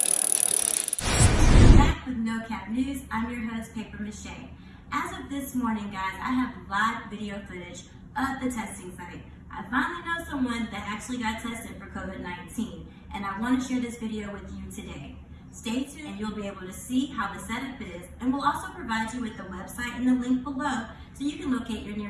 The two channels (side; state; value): both; identical; correlation 1.00